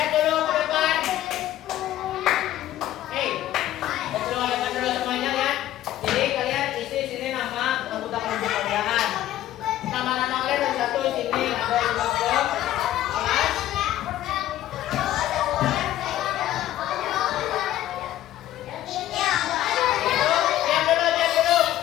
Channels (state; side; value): quieter; right; 13.5 dB